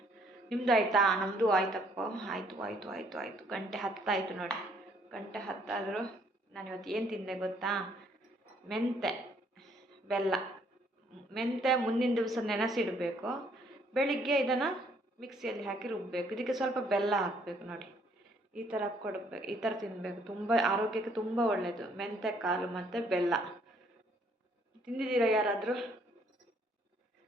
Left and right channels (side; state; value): both; normal; correlation 0.65